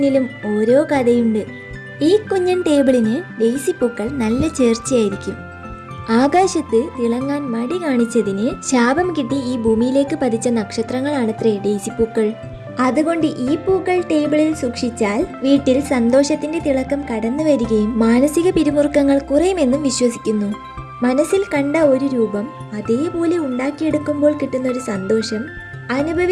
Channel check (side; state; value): both; identical; correlation 1.00